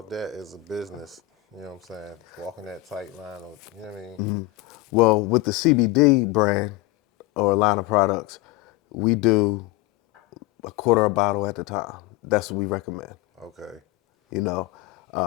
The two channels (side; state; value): right; quieter; 18.2 dB